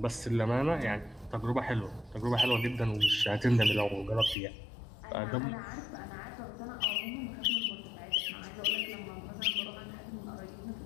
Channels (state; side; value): drops out; right; at 4.4 s